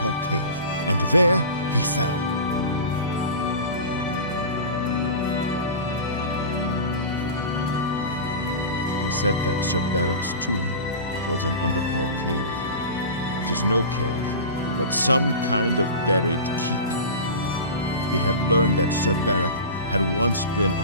Cave, and there he fell. He said that Sir Beric's tomb was in Underpole Cave, which is no cave, but some kind of buried keep. He had learned that Sir Beric had once been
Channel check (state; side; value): inverted; both; correlation -0.31